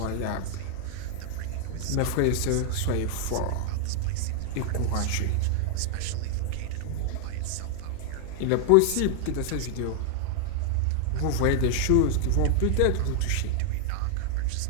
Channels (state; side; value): different; both; correlation 0.00